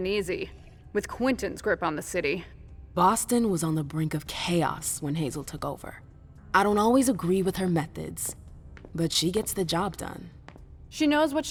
easy, with Quentin's grip on the city. Boston was on the brink of chaos when Hazel took over. I don't always agree with her methods, but she gets the job done. She knows what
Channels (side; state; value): both; identical; correlation 1.00